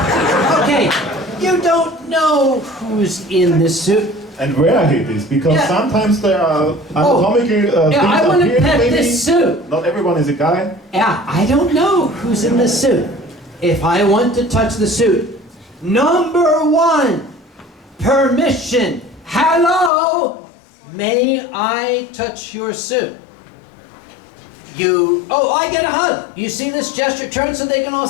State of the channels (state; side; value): drops out; right; at 19.9 s